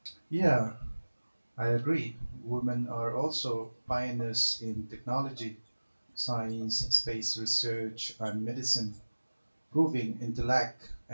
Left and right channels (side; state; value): both; inverted; correlation -1.00